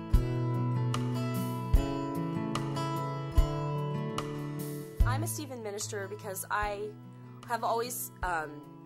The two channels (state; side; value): identical; both; correlation 1.00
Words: I'm a Stephen minister because I have always